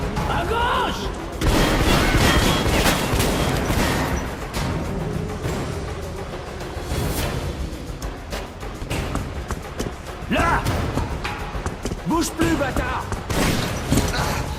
À gauche! Là! Bouge plus, bâtard!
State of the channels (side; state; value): both; identical; correlation 1.00